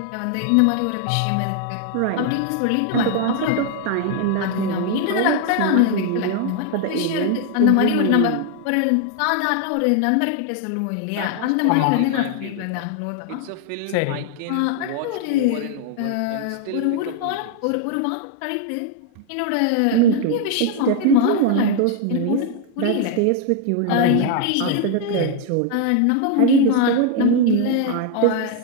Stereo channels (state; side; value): different; both; correlation 0.00